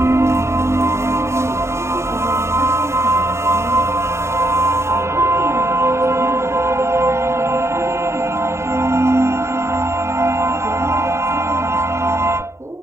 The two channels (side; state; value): left; late; 0.13 ms